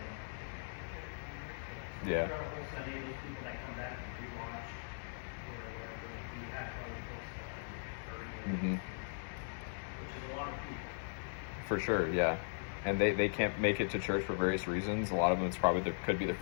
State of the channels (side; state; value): right; silent; 52 dB below the other